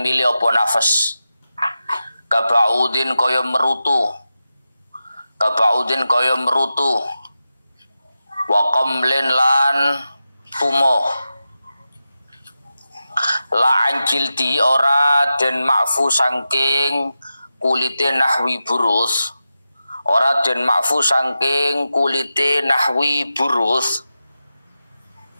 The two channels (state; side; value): inverted; both; correlation -0.92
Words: milih apa nafas kabaudin kaya merutu wa qamlin lan tumo la anjilti ora den makfu saking kulite nahwi burus, ora den makfu saking kulite nahwi burus.